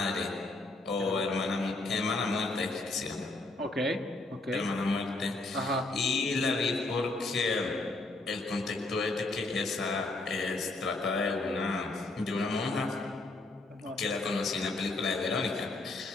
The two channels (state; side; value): quieter; right; 3.1 dB